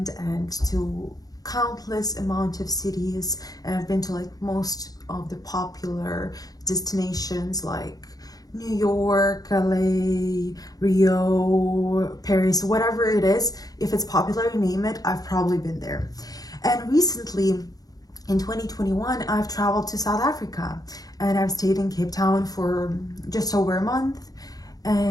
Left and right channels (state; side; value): late; right; 0.18 ms